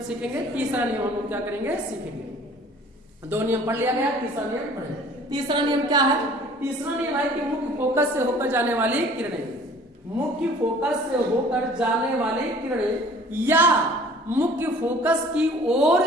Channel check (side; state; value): both; normal; correlation 0.51